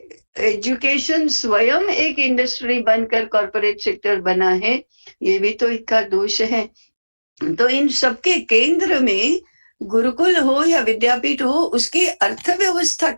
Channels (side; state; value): both; inverted; correlation -1.00